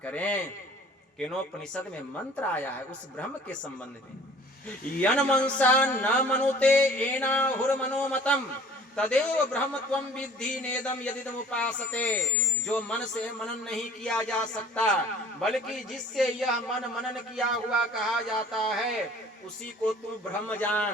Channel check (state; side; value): normal; both; correlation 0.49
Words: करें। केनोपनिषद में मंत्र आया है उस ब्रह्म के संबंध में, यन मनसा न मनुते एना हुर मनोमतम तदेव ब्रह्म त्वं विद्धि नेदम यदिदम उपासते। जो मन से मनन नहीं किया जा सकता, बल्कि जिससे यह मन मनन किया हुआ कहा जाता है, उसी को तू ब्रह्म